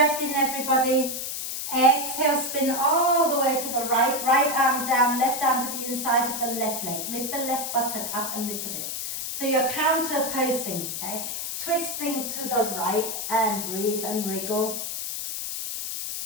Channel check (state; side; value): noise; left; hiss, 4 dB below the sound